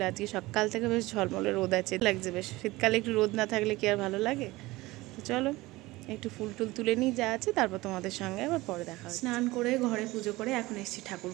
আজকে সকাল থেকে বেশ ঝলমলে রোদ আছে, লাগছে বেশ। শীতকালে একটু রোদ না থাকলে কি আর ভালো লাগে? তো চলো একটু ফুল টুল তুলে নিই যা আছে, তারপর তোমাদের সঙ্গে আবার পরে দেখা হবে। স্নান করে ঘরে পুজো করে এখন এসেছি ঠাকুর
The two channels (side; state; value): left; quieter; 19.9 dB